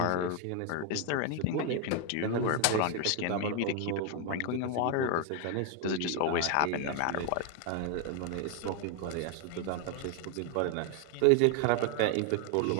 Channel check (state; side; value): different; both; correlation 0.01